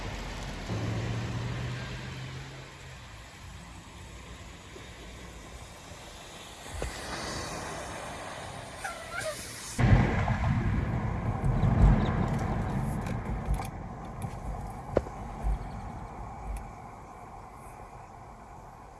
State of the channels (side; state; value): both; identical; correlation 1.00